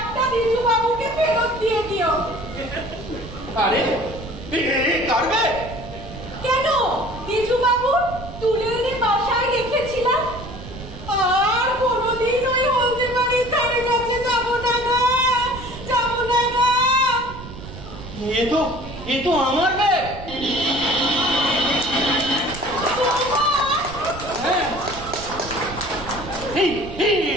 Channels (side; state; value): right; noise; rumble, 13 dB below the sound